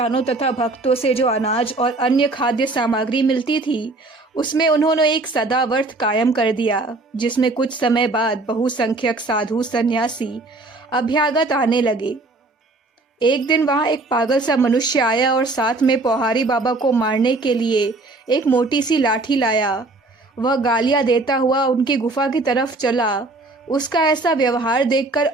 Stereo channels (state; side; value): quieter; left; 3.1 dB